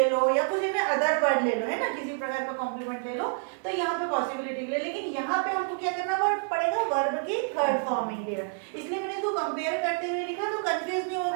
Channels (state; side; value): silent; left; 55 dB below the other